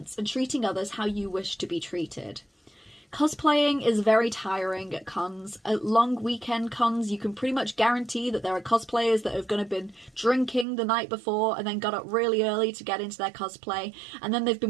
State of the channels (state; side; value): drops out; left; at 10.7 s